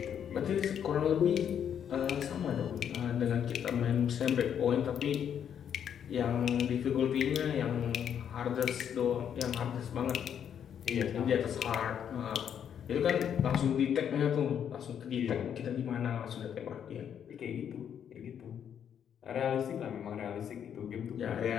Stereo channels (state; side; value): quieter; right; 8.7 dB